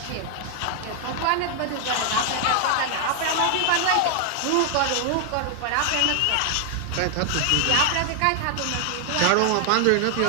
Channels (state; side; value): different; both; correlation 0.00